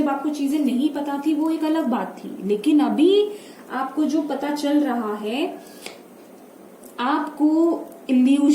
आपको चीजें नहीं पता थी वो एक अलग बात थी, लेकिन अभी आपको जो पता चल रहा है, आपको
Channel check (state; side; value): identical; both; correlation 1.00